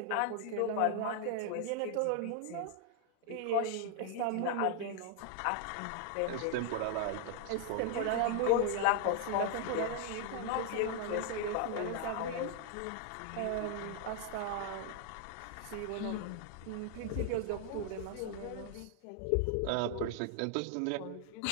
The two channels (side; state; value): both; different; correlation 0.00